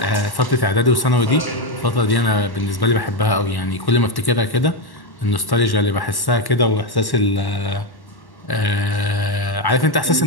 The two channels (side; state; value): right; late; 1.1 ms